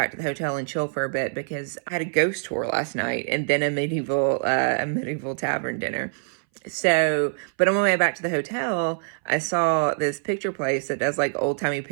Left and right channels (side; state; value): left; silent; 60 dB below the other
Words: to the hotel and chill for a bit because I had a ghost tour last night and then a medieval tavern dinner. So, but on my way back to the hotel, I saw this picture place that does like old timey